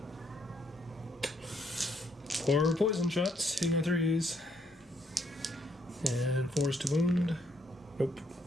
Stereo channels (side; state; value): both; normal; correlation 0.71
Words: 4 poison shots, hitting on 3s. And 4s to wound. Nope.